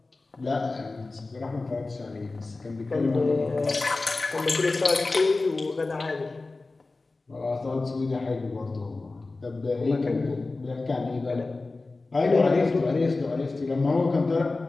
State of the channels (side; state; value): right; quieter; 3.5 dB